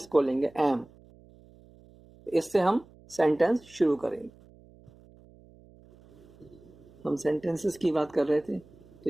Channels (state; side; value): noise; right; hum, 25 dB below the sound